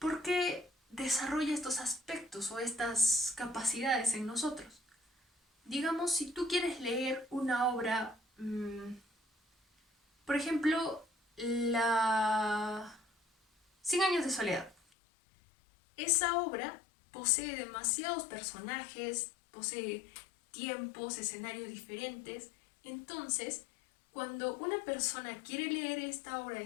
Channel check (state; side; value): drops out; right; at 14.8 s